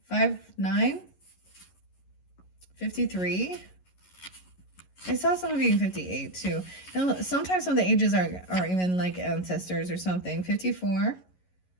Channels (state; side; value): late; right; 11 ms